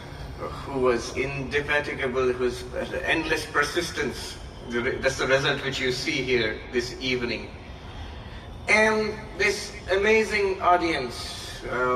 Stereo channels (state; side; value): identical; both; correlation 1.00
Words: was indefatigable, whose endless persistence. That's the result which you see here this evening. And this amazing audience,